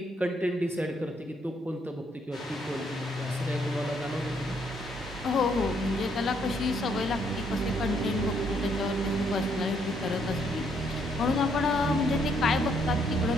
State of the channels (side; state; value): both; normal; correlation 0.71